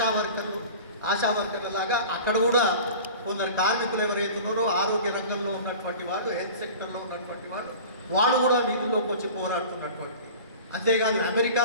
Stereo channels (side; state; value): both; inverted; correlation -0.38